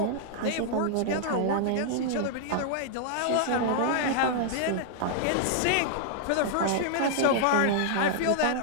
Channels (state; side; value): different; both; correlation -0.01